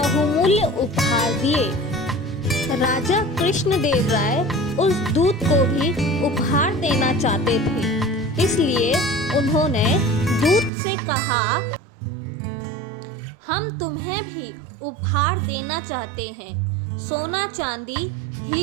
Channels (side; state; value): left; drops out; at 10.7 s